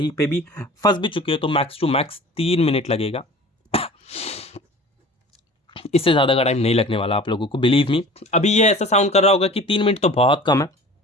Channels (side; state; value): both; normal; correlation 0.42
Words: पे भी फंस भी चुके हो तो मैक्स टू मैक्स 3 मिनट लगेगा। इससे ज़्यादा का टाइम नहीं लगने वाला आप लोगों को, बिलीव मी। अभी ये ऐसा साउंड कर रहा होगा कि 3 मिनट तो बहुत कम है,